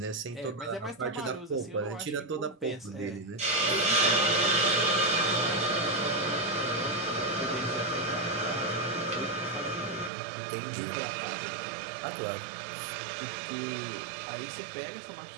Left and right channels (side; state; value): left; drops out; at 10.1 s